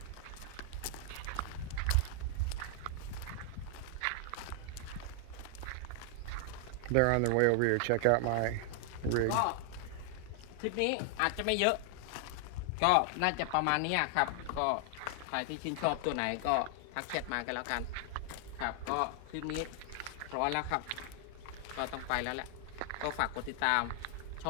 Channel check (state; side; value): different; both; correlation 0.00